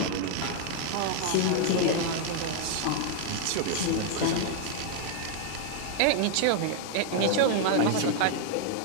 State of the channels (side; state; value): both; different; correlation 0.00